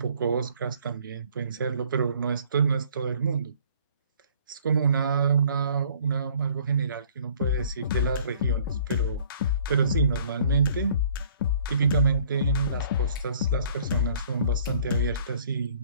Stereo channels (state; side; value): inverted; both; correlation -0.55